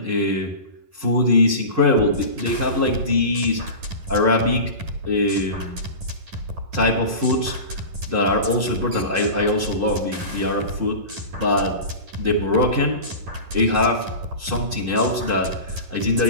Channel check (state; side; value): late; left; 11 ms